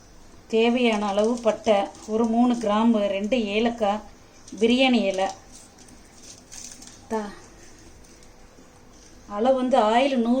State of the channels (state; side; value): identical; both; correlation 1.00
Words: தேவையான அளவு பட்டை, ஒரு 3 கிராம்பு, 2 ஏலக்காய், பிரியாணி இலை. அளவு வந்து ஆயில்